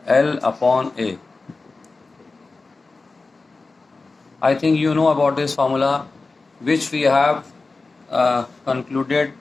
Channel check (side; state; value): right; quieter; 3.8 dB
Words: L upon A. I think you know about this formula which we have concluded